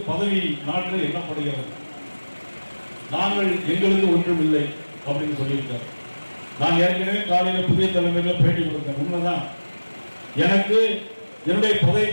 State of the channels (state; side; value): inverted; both; correlation -1.00